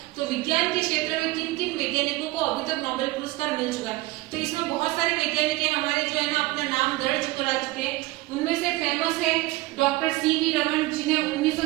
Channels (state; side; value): quieter; left; 19.8 dB